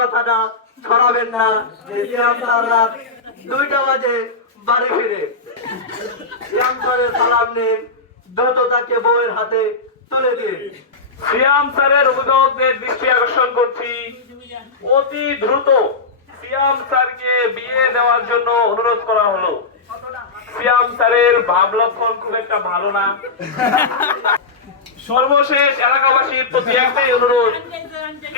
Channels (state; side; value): quieter; right; 3.9 dB